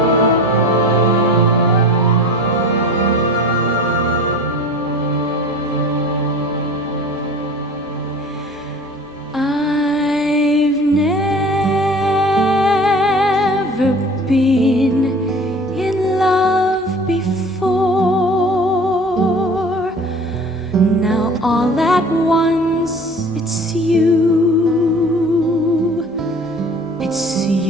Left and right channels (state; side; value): normal; both; correlation 0.42